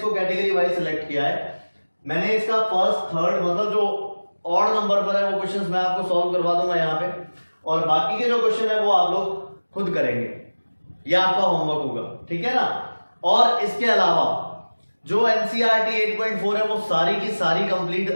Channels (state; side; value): inverted; both; correlation -1.00